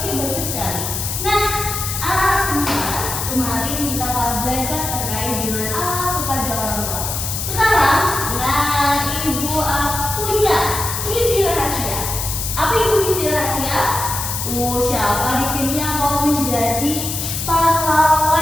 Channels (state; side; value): noise; left; hiss, 4 dB below the sound